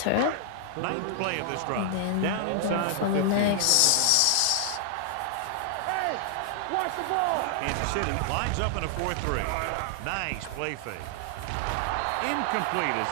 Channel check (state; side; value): different; both; correlation 0.00